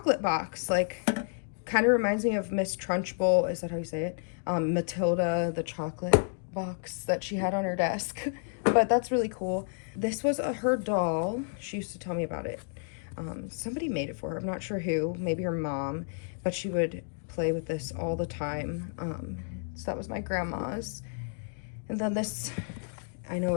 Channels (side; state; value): right; silent; 57 dB below the other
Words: box. Like, kind of reminds me of Miss Trunchbull. Is that how you say it? Matilda, the chocolate box that she had on her desk. But that's really cool. This was her doll. She used to tell me about it. Somebody made it for her. I'm not sure who. Maybe her mom. But she would play with this all the time. So that was my grandma's. And then this, I know,